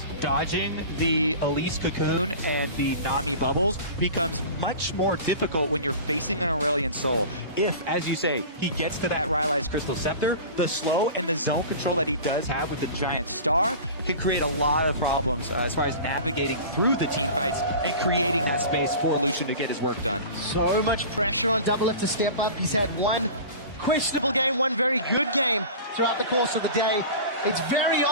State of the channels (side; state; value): both; inverted; correlation -0.36